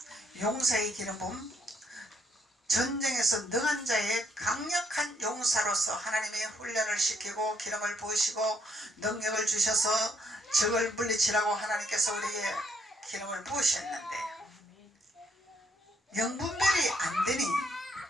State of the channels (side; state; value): both; normal; correlation 0.72